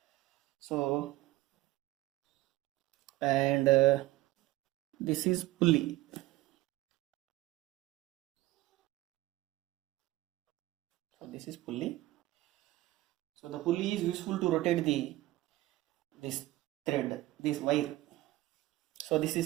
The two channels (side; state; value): left; quieter; 17.6 dB